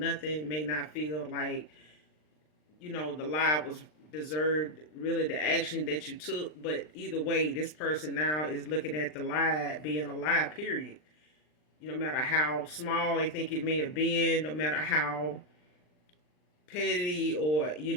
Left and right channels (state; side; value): late; right; 39 ms